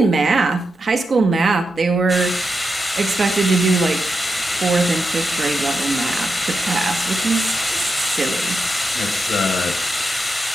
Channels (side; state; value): both; normal; correlation 0.87